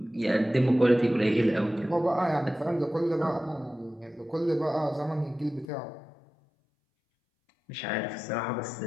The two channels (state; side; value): drops out; right; at 5.7 s